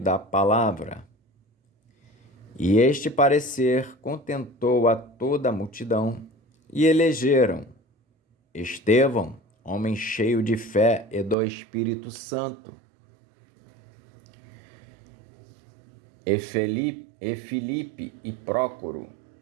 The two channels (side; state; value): left; drops out; at 11.4 s